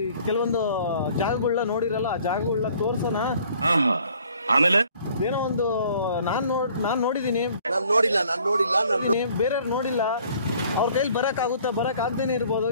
ಕೆಲವೊಂದು ಜಾಗಗಳನ್ನ ನೋಡಿರಲ್ಲ, ಆ ಜಾಗಗಳನ್ನ ತೋರ್ಸೋಣ. ಆಮೇಲೆ ಏನೋ ಒಂದು ನಾನ್ ನೋಡಿದೀನಿ, ಬೇರೆಯವ್ರು ನೋಡಿಲ್ಲ, ಅವ್ರ ಕೈಲಿ ಬರಕ್ ಆಗ್ದೇನೆ ಇರ್ಬೋದು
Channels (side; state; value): both; inverted; correlation -0.56